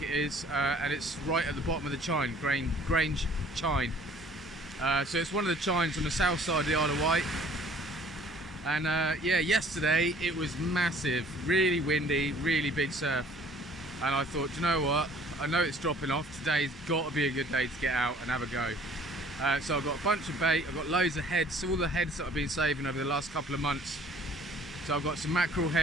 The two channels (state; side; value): normal; both; correlation 0.55